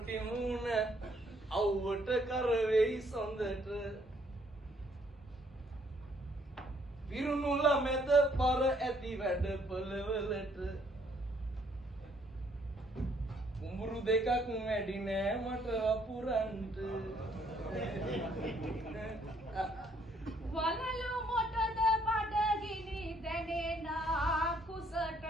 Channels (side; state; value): both; normal; correlation 0.66